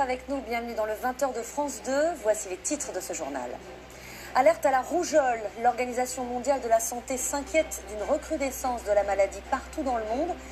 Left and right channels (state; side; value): identical; both; correlation 1.00